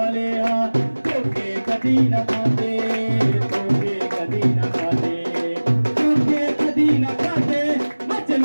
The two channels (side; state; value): both; inverted; correlation -1.00